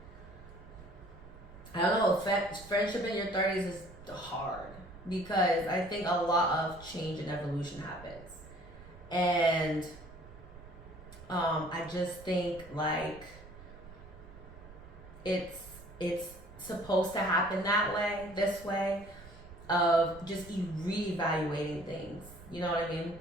I don't know, friendship in your 30s is hard, because I think a lot of change and evolution happens. And I just think, like, it's supposed to happen that way, this way, of just reevaluating things. You know what I mean?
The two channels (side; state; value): right; noise; rumble, 18 dB below the sound